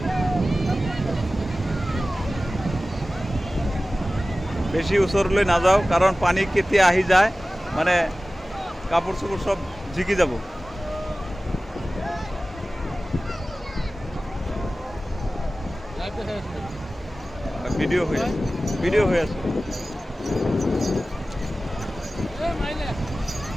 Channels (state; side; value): normal; both; correlation 0.96